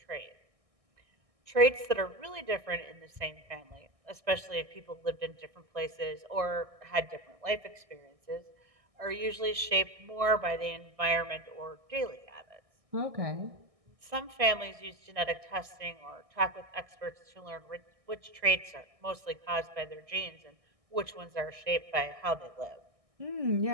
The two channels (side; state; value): left; late; 1.6 ms